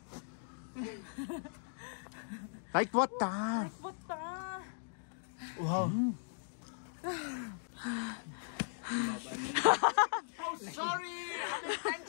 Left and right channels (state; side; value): silent; right; digital silence